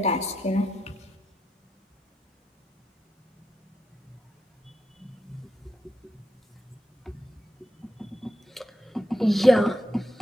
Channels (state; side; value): normal; both; correlation 0.84